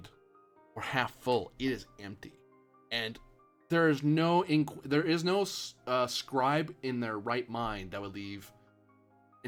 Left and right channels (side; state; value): both; identical; correlation 1.00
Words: or half full; it is empty, and there is no scribe in their right mind that would leave